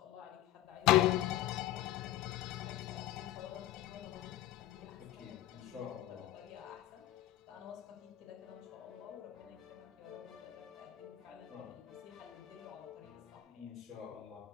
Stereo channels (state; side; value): quieter; right; 13.8 dB